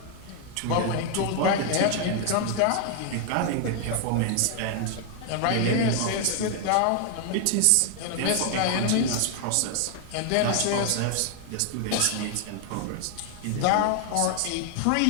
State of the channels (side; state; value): both; different; correlation 0.00